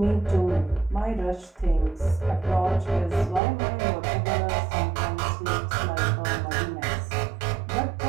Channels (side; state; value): left; drops out; at 3.4 s